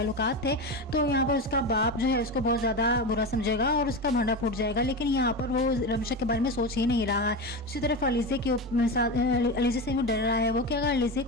थे, तो यहाँ पर उसका बाप जो है उसको बहुत ज़्यादा बुरा समझेगा और उसका भांडा फूट जाएगा। लेकिन यहाँ पर वो रमशा के बारे में सोच ही नहीं रहा है। दूसरी तरफ अलीज़े के साथ अलीज़े से भी डर रहा है वो कि अगर अलीज़े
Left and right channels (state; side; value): normal; both; correlation 0.20